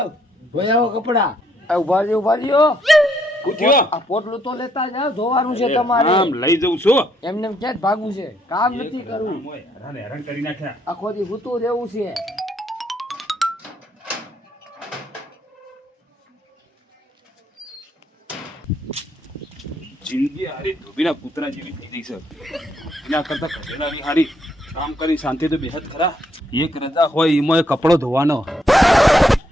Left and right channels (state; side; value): normal; both; correlation 0.72